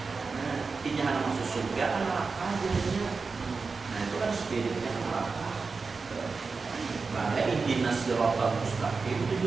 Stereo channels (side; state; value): left; quieter; 4.5 dB